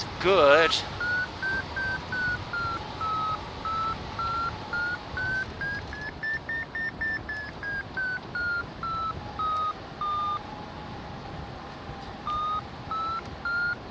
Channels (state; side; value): identical; both; correlation 1.00